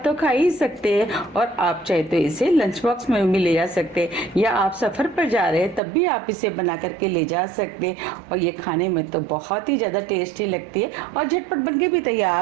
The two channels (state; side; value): drops out; left; at 5.8 s